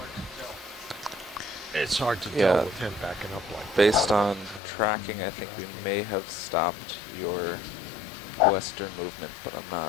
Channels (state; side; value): drops out; right; at 4.6 s